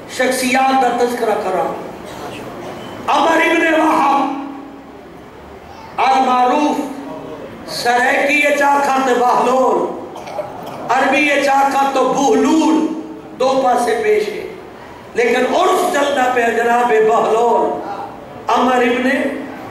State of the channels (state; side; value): identical; both; correlation 1.00